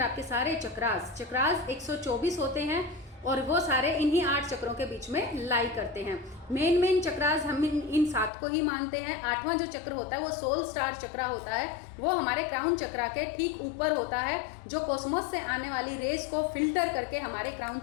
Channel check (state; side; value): drops out; right; at 8.3 s